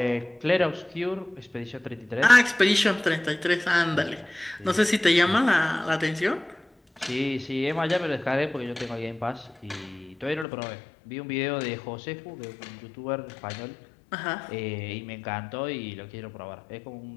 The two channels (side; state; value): right; drops out; at 10.5 s